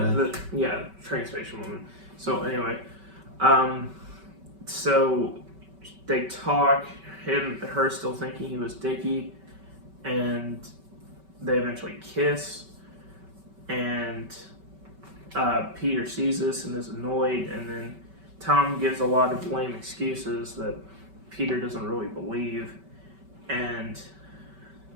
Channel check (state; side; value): late; left; 5.2 ms